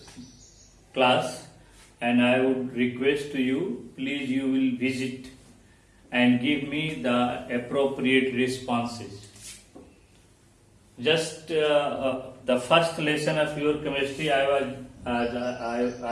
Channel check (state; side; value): identical; both; correlation 1.00